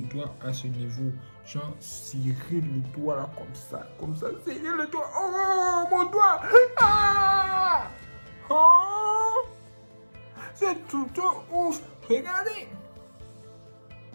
doigt à ce niveau. Genre, serrer le doigt là comme ça, serrer le doigt. Oh, mon doigt! Ah! Oh! C'est tout ouf! Regardez!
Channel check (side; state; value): both; inverted; correlation -1.00